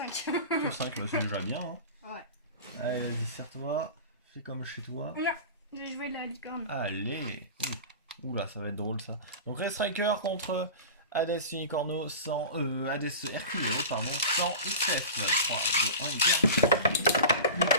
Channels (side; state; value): both; inverted; correlation -0.32